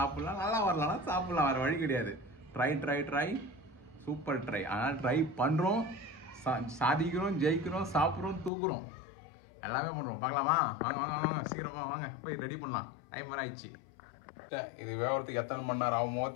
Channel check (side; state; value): right; drops out; at 8.5 s